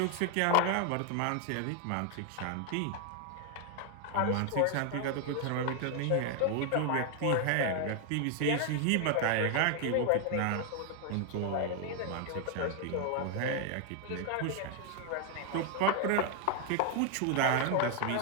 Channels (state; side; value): different; both; correlation 0.00